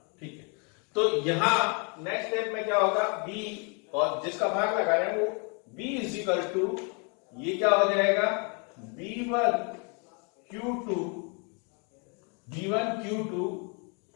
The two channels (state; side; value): quieter; right; 36.1 dB